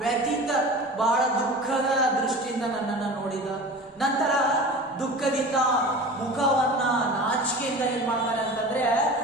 ವ್ಯತೀತ ಬಹಳ ದುಃಖದ ದೃಷ್ಟಿಯಿಂದ ನನ್ನನ್ನ ನೋಡಿದ, ನಂತರ ದುಃಖದಿಂದ ಮುಖವನ್ನ ನಾಚಿಕೆಯಿಂದ ಏನ್ ಮಾಡ್ತಾನೆ ಅಂತಂದ್ರೆ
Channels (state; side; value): normal; both; correlation 0.36